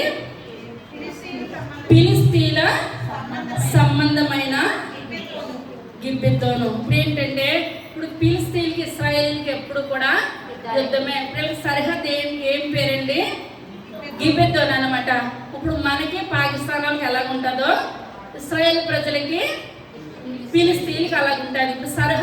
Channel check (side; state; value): both; identical; correlation 1.00